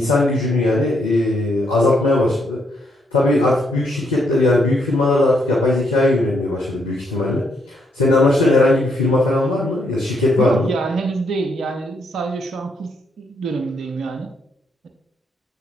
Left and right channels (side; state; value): both; normal; correlation 0.75